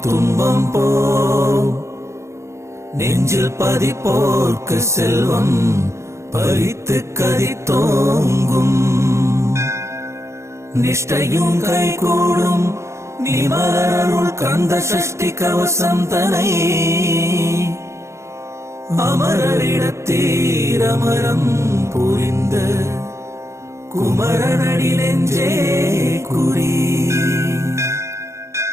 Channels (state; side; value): late; left; 0.14 ms